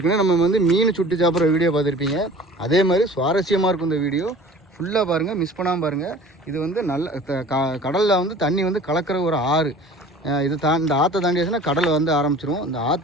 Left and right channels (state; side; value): normal; both; correlation 0.44